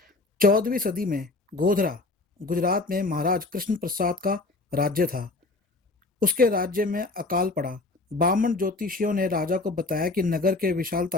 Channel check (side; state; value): right; quieter; 3.2 dB